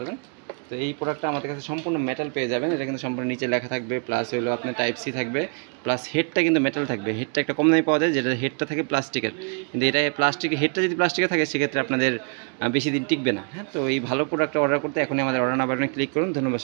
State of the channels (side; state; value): left; quieter; 39.1 dB